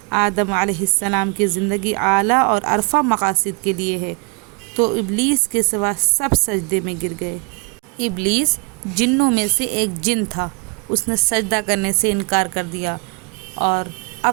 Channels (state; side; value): quieter; left; 33.5 dB